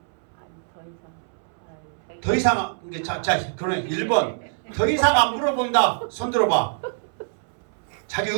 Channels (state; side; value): silent; left; 62 dB below the other